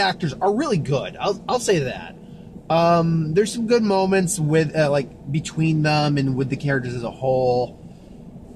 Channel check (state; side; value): identical; both; correlation 1.00